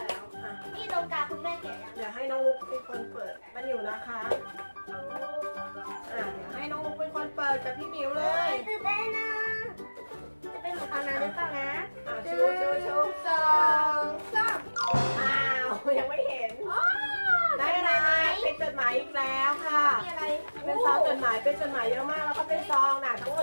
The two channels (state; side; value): inverted; both; correlation -1.00